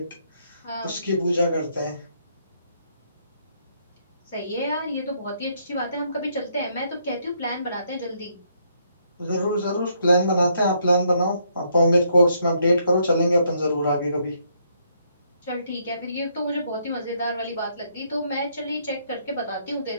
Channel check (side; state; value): both; inverted; correlation -0.72